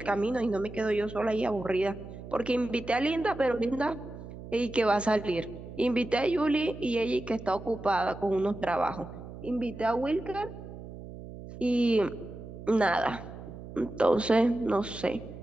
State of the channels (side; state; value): right; noise; hum, 13 dB below the sound